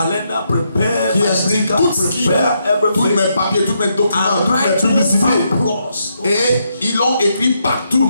prepare qui my sticker, tout ce qui tous mes papiers, tous mes documents, toutes mes publicités. Et ils l'ont écrit partout,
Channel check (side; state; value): both; inverted; correlation -0.79